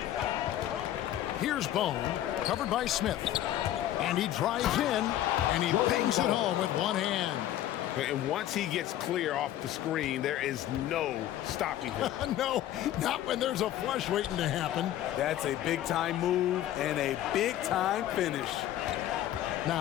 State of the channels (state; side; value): quieter; right; 12.7 dB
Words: Here's Bone, covered by Smith. And he drives in, and he bangs it home with one hand. And once he gets clear off the screen, there is no stopping him. No, not when there's a flush waiting to happen. That's a big-time move and a big-time finish.